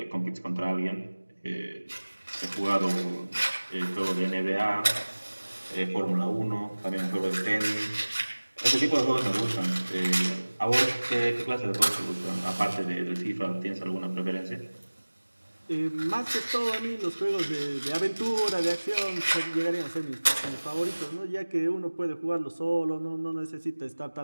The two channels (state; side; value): inverted; both; correlation -1.00